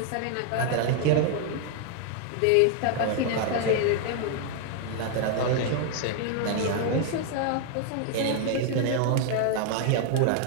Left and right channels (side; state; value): both; different; correlation 0.00